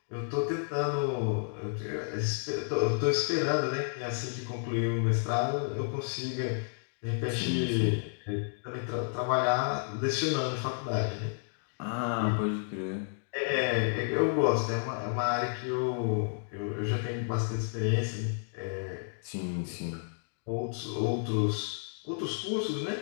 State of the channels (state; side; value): silent; right; digital silence